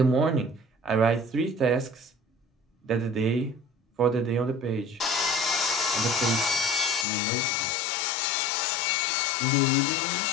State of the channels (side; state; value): right; drops out; at 7.1 s